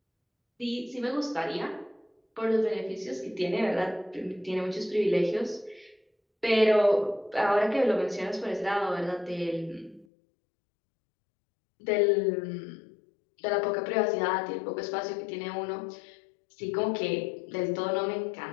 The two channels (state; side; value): drops out; right; at 10.1 s